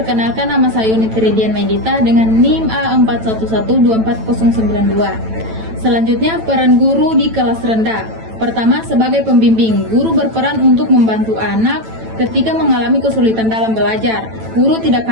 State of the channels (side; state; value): left; late; 9.0 ms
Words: nama saya Unit Ridian Maidita dengan NIM A41124092. Selanjutnya, peran guru di kelas rendah. Pertama, sebagai pembimbing, guru berperan untuk membantu anak ketika mengalami kesulitan dalam belajar. Guru tidak